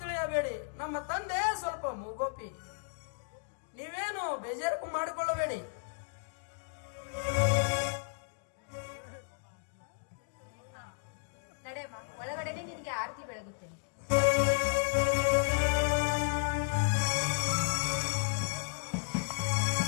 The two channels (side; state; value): right; silent; digital silence